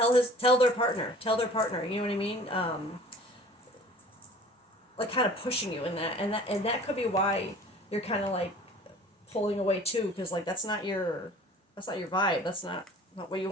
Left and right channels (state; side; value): normal; both; correlation 0.47